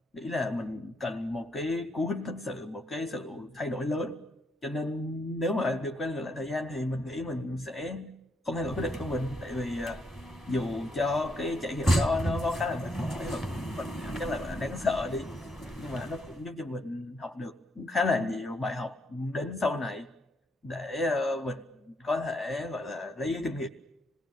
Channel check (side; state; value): both; normal; correlation 0.75